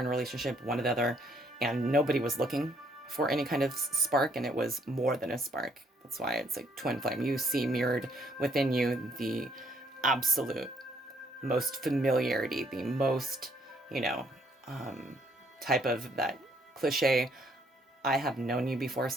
a relationship, one or the other, and nobody was looking for any kind of spark, and it was more than a spark. That's why it's like twin flame. You see mirrored within you the absolute most familiarity, the most, you know, type of that cliche, I have known you before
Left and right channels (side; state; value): both; normal; correlation 0.67